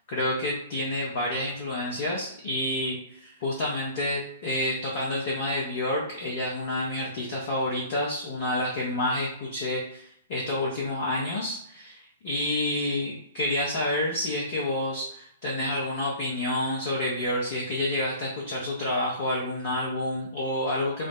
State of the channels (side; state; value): both; inverted; correlation -0.44